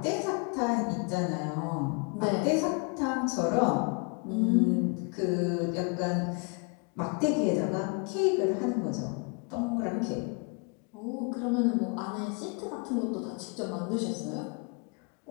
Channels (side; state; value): right; quieter; 35.1 dB